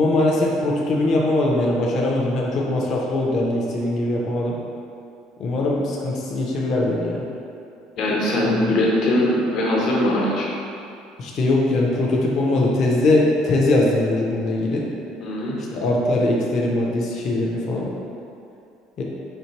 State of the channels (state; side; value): normal; both; correlation 0.70